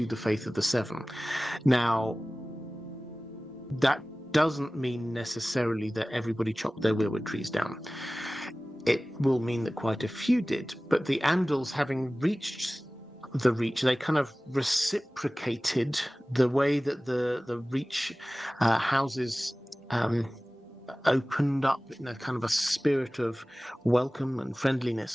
the Faith of the Seven. Now, that doesn't mean necessarily that everybody chopped their weirwood trees down. It will mean that quite a few did, but the Andals, having reached the Reach, they kind of reciprocated the way that the Reach houses opened up in a kind of a spirit of welcome and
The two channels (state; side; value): normal; both; correlation 0.98